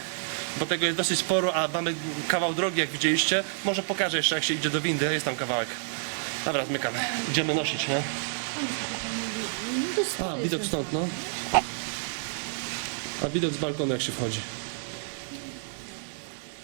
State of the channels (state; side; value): silent; left; digital silence